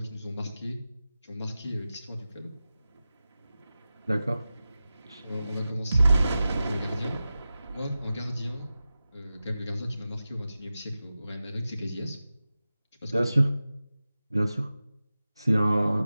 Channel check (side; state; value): both; inverted; correlation -0.94